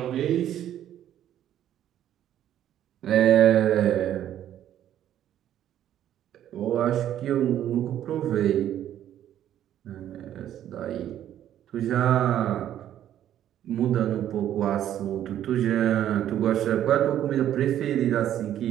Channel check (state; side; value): quieter; left; 11.3 dB